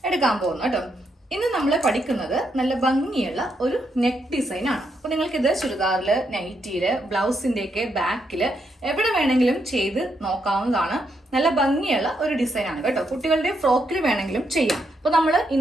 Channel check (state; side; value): normal; both; correlation 0.79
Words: എടുക്കാൻ പോകുന്നത് കേട്ടോ. ഇന്ന് നമ്മൾ പഠിക്കുന്നത് നല്ല ഭംഗിയുള്ള ഒരു നെക്ക് ഡിസൈൻ ആണ്. അപ്പൊ നിങ്ങൾക്ക് ഇത് ചുരിദാറില്, നൈറ്റിയില്, ബ്ലൗസിന്റെ ഒക്കെ ബാക്കില് എവിടെ വേണമെങ്കിലും ചെയ്ത് നോക്കാവുന്നതാണ്. നല്ല ഭംഗിയുള്ള ഒരു ഡിസൈൻ ആണ് കേട്ടോ. കുട്ടികളുടെ ഫ്രോക്കിൽ വേണമെങ്കിലും ചെയ്യാം. അപ്പൊ നമ്മൾ